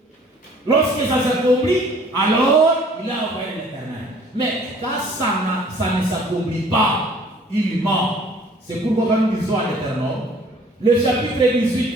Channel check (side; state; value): both; normal; correlation 0.54